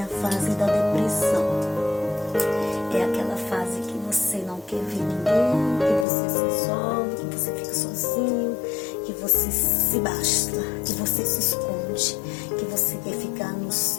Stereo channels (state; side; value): drops out; right; at 6.1 s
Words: a fase da depressão. É aquela fase que você não quer ver ninguém, que você se isola, que você fica sozinho, que você se basta, que você se esconde, que você quer ficar no